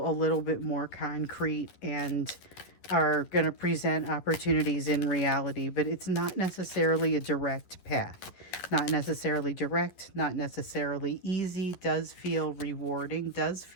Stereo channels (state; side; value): late; right; 11 ms